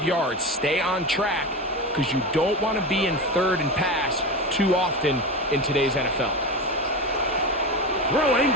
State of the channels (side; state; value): both; normal; correlation 0.22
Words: yards. Stay on track because you don't want to be in 3rd and pass too often in today's NFL. Throwing